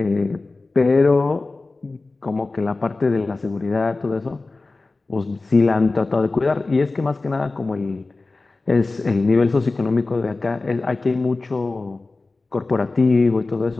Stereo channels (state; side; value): quieter; right; 3.4 dB